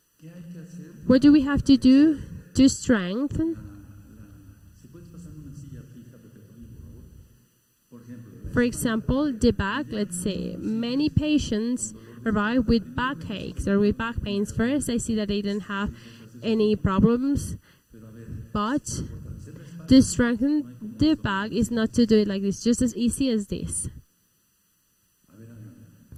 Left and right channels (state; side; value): identical; both; correlation 1.00